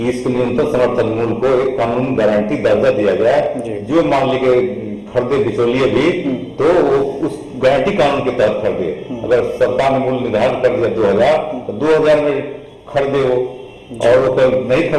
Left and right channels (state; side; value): identical; both; correlation 1.00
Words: इसको न्यूनतम समर्थन मूल्य को एक कानूनी गारंटी दर्जा दिया जाए, जो मान लीजिए खरीदे बिचौलिए भी तो वो उस गारंटी कानून के तहत खरीदे। अगर सरकार ने मूल्य निर्धारित कर दिया 2000 तो 2000 में खरीदे वो, और वो नहीं